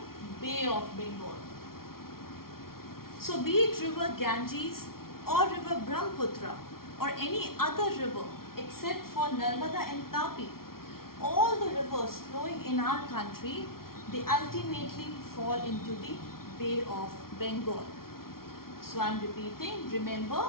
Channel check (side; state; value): right; late; 0.93 ms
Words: Bay of Bengal. So be it river Ganges or river Brahmaputra or any other river except for Narmada and Tapi, all the rivers flowing in our country, they ultimately fall into the Bay of Bengal. So I am repeating, remember